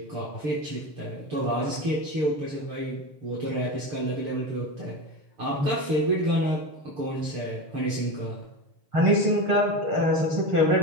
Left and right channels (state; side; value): late; left; 6.8 ms